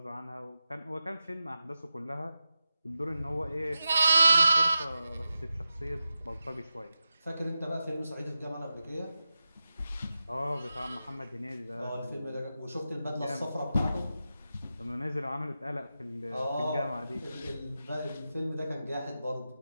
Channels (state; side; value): inverted; both; correlation -0.91